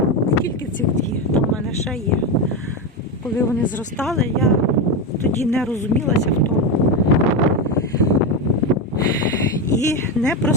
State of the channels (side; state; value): both; normal; correlation 0.13